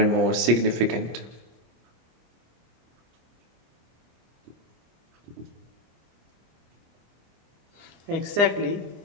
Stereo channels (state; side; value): late; left; 25 ms